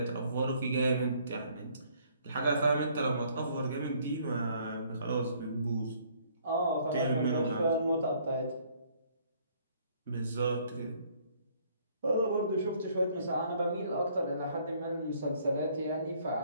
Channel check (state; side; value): inverted; both; correlation -0.62